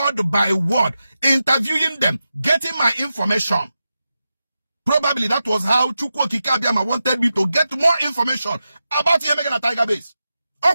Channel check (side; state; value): both; inverted; correlation -0.91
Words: by word, interviewing them, getting my information. Probably that was how Chukwu Kikabiama wanted me to get more information about him making a Tiger Base. Or